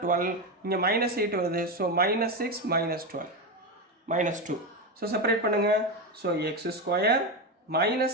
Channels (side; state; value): both; normal; correlation 0.14